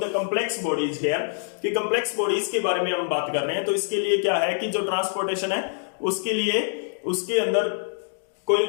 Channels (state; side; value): silent; right; digital silence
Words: the complex bodies here, कि कॉम्प्लेक्स बॉडीज के बारे में हम बात कर रहे हैं. तो इसके लिए क्या है कि जो ट्रांसपोर्टेशन है उसके लिए उसके अंदर कोई ना